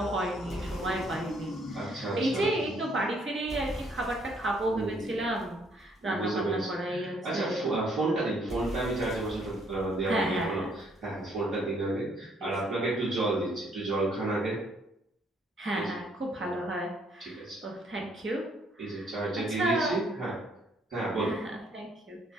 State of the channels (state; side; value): normal; both; correlation 0.66